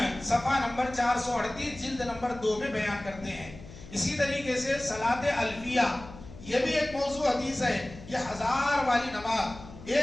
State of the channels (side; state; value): left; noise; hum, 16 dB below the sound